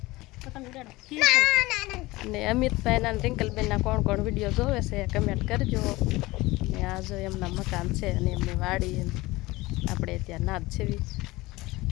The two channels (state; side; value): quieter; right; 20.4 dB